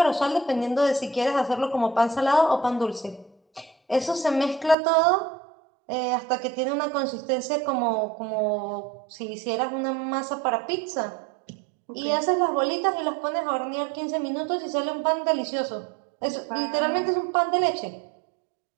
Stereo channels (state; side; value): drops out; left; at 4.8 s